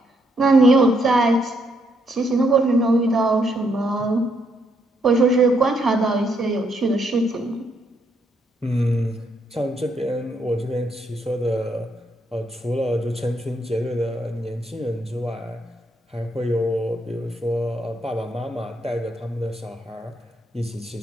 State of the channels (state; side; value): normal; both; correlation 0.75